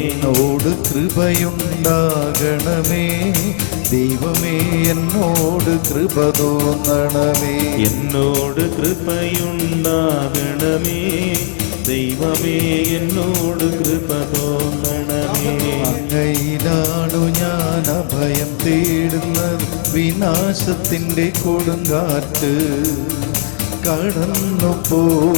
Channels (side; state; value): right; silent; digital silence